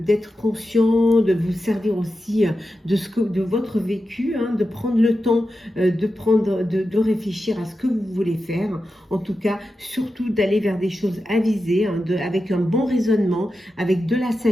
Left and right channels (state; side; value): normal; both; correlation 0.91